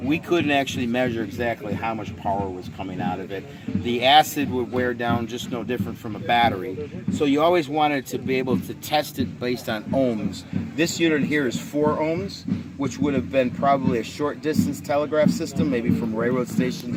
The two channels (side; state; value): both; identical; correlation 1.00